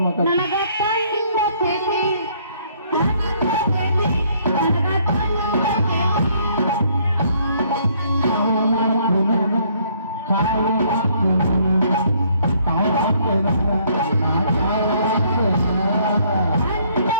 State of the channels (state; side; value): inverted; both; correlation -0.65